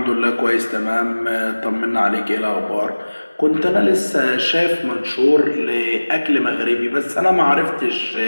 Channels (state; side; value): inverted; both; correlation -1.00